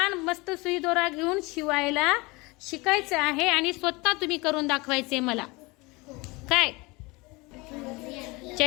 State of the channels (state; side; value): quieter; right; 24.7 dB